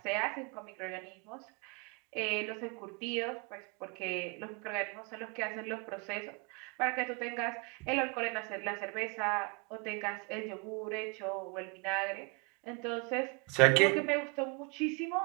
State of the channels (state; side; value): quieter; left; 32.1 dB